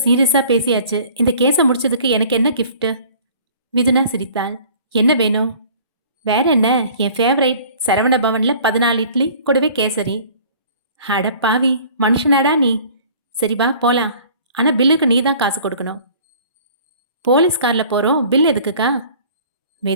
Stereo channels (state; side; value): inverted; both; correlation -0.49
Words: பேசியாச்சு. இந்த கேஸை முடிச்சதுக்கு எனக்கு என்ன கிஃப்ட்? மிதுனா சிரித்தாள். என்ன வேணும்? வேற என்ன, என் ஃபேவரைட் சரவண பவன்ல 14 இட்லி கூடவே கேசரி. அட பாவி, மனுஷனாடா நீ. சரி வா போலாம், ஆனா பில்லுக்கு நீ தான் காசு கொடுக்கணும். போலீஸ் கார்ல போறோம், பில் எதுக்குக்கா?